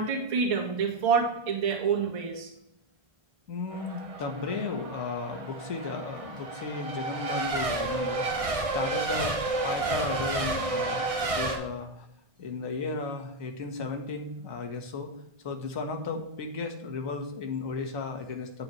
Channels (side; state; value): left; late; 1.6 ms